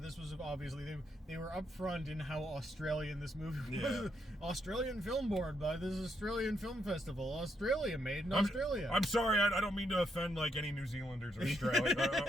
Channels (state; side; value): normal; both; correlation 0.78